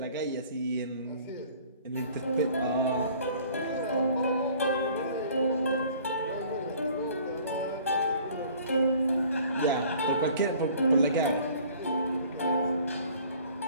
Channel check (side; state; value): both; inverted; correlation -0.52